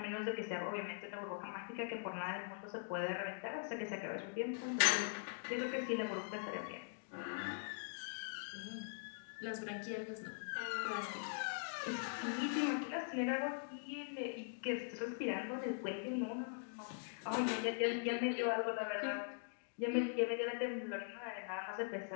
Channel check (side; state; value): right; silent; digital silence